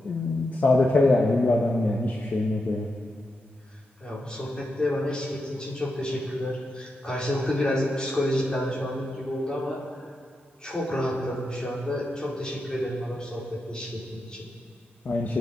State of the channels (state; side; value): normal; both; correlation 0.86